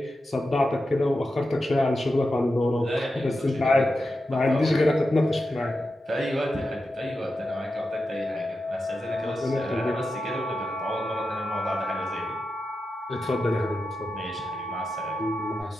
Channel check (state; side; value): normal; both; correlation 0.90